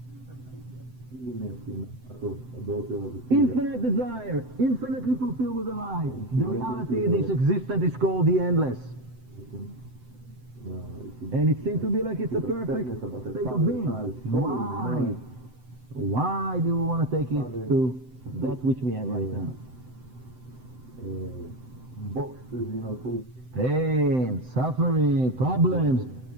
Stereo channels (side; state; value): left; late; 7.9 ms